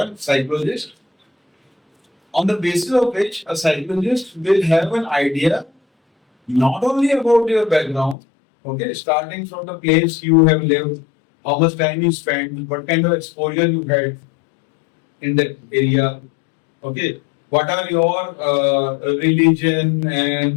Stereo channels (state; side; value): drops out; right; at 8.2 s